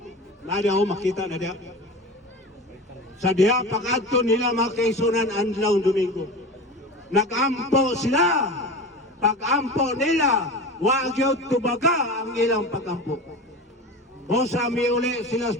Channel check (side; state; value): both; normal; correlation 0.30